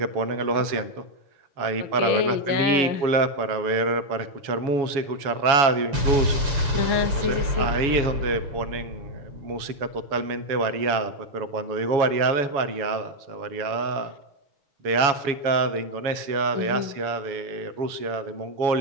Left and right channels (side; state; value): left; late; 7.2 ms